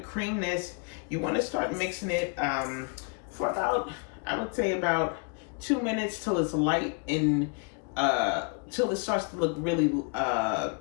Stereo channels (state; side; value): quieter; right; 34.9 dB